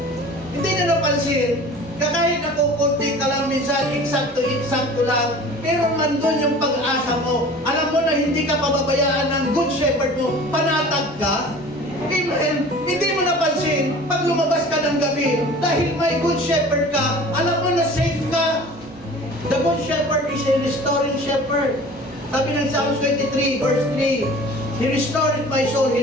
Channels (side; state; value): both; normal; correlation 0.43